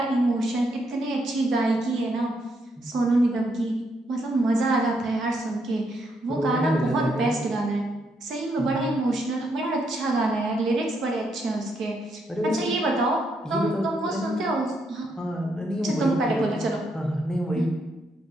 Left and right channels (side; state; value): both; normal; correlation 0.77